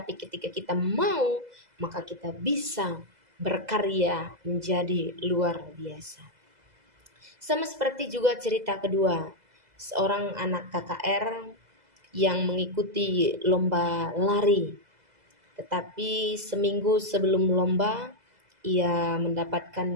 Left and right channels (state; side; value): late; left; 2.0 ms